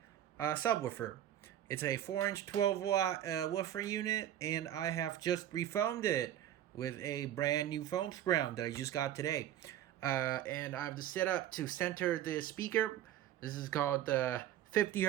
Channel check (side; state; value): left; quieter; 11.6 dB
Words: subwoofer. It's a 4-inch 12-watt woofer unit, and I have just refoamed it with a brand new foam sprout that I just got today. And I have the setup to center the speaker. This is called the 50